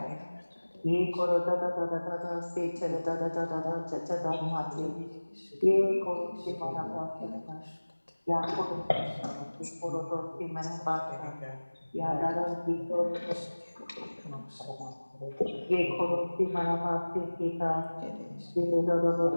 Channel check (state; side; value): inverted; both; correlation -1.00